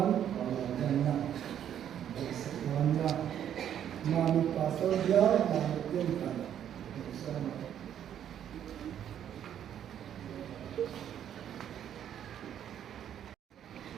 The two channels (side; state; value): left; quieter; 9.9 dB